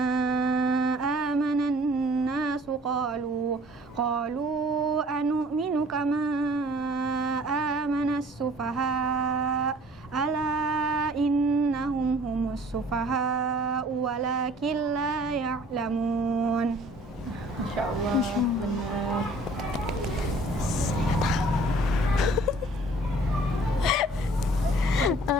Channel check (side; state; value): both; normal; correlation 0.53